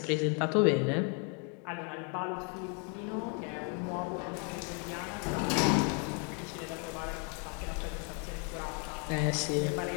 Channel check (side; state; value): right; quieter; 37.9 dB